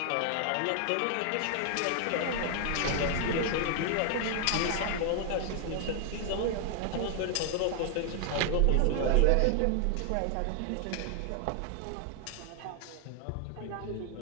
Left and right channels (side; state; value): both; different; correlation 0.00